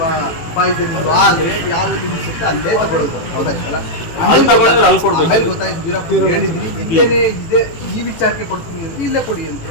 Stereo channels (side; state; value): right; late; 18 ms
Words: ಪಾಯ್ಸನಿಂಗ್ ಆದ್ರೆ ಯಾವ್ದು ಲಿಮಿಟ್ಸ್ ಇರುತ್ತೆ ಅಲ್ಲೇ ತಗೊಳ್ಳೋದು. ಹೌದಾಯ್ತಲ್ಲ, ಆಮೇಲೆ ಗೊತ್ತಾಯ್ತು ವೀರಪ್ಪ ಹೇಳಿದ್ವಿ ಇಲ್ಲೇನೆ ಇದೆ, ಈ ವಿಚಾರಕ್ಕೆ ಕೊಡ್ತೀನಿ ಅಂದ್ರೆ ಇಲ್ಲೇ ಕೊಡಿ ಅಂತ